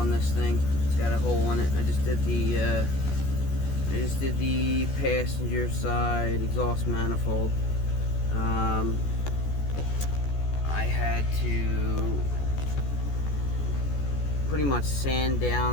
this thing. It's got a hole in it. I just did the passenger side exhaust manifold. I had to pretty much sand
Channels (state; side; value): late; right; 14 ms